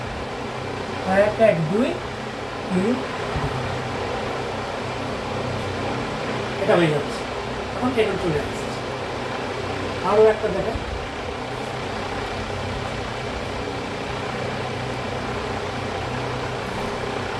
1 1 2 3, এটা হয়ে যাচ্ছে। এখন এটা চলে আসছে। আরো একটা দেখেন,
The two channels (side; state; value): both; identical; correlation 1.00